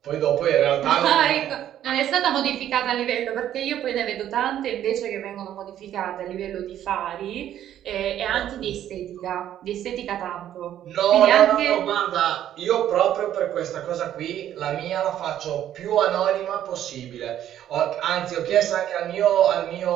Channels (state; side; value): quieter; left; 11.3 dB